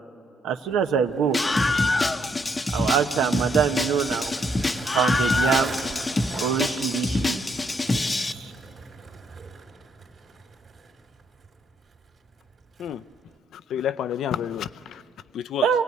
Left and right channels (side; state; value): both; normal; correlation 0.72